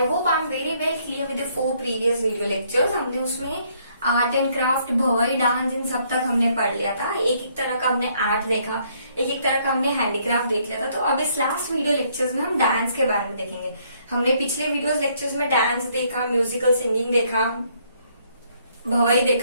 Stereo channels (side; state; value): both; inverted; correlation -0.68